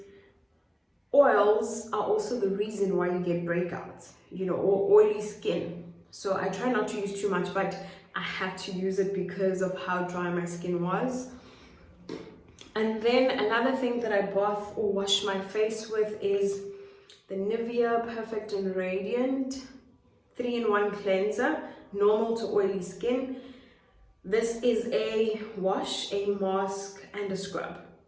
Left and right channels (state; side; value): identical; both; correlation 1.00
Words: oils are also the reason why you get breakouts, you know, or oily skin. So I try not to use too much, but I had to use it because of how dry my skin was. And then another thing that I bath or wash my face with is the Nivea Perfect and Radiant 3-in-1 cleanser, normal to oily skin. This is a wash, a mask, and a scrub.